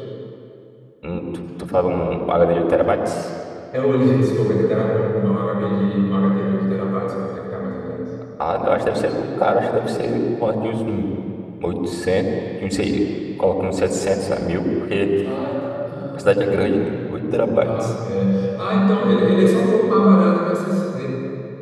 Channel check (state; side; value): identical; both; correlation 1.00